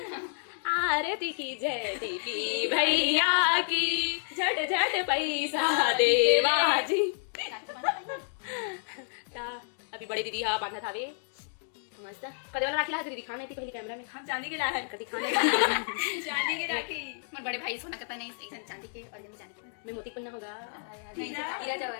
आरती की जय दीपी भैया की झट झट पैसा दे बाजी। अभी बड़ी दीदी हाँ बांधा था वे मस्त कदे वाला राखी ला दीदी दिखाने थी पहले कैमरा में हम चांदी के लाए कदी खाने चांदी की राखी मोर बड़े भाई सोना का नहीं एक चांदी के और मैं चांदी मैं मोती पहनना होगा हीरा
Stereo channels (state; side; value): silent; right; digital silence